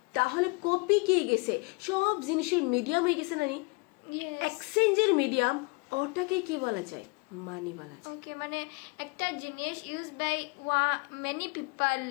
তাহলে কপি কি গেছে সব জিনিসের মিডিয়াম হয়ে গেছে নানি এক্সচেঞ্জের মিডিয়াম ওটাকে কি বলা যায় মানি বলা যায় ওকে মানে একটা জিনিস use by many people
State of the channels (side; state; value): right; quieter; 29.1 dB